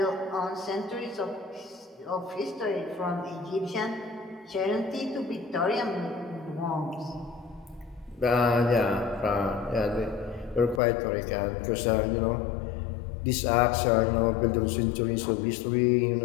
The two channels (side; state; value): right; drops out; at 10.8 s